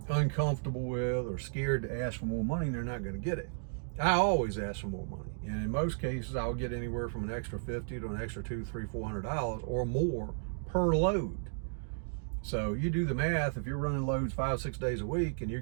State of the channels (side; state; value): left; silent; digital silence